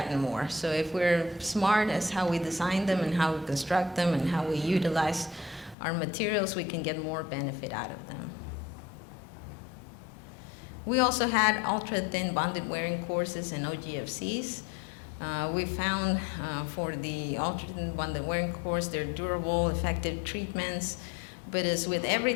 more. So if we're smart as how we design them and how we construct them and how we utilize our materials, we can get more benefit out of them. We also had ultra-thin bonded wearing courses and OGFCs. We found for the ultra-thin bonded wearing course, they're durable, effective treatments, but as with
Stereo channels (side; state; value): right; drops out; at 5.8 s